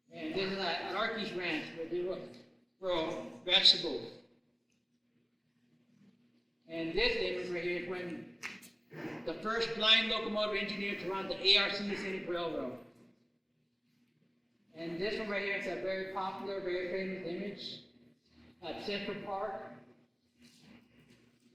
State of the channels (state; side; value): identical; both; correlation 1.00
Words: And this is at Arky's Ranch where they would grow vegetables. And this image right here is when the first blind locomotive engineer to run the ARC Scenic Railroad. And this one right here is a very popular, very famous image at Central Park.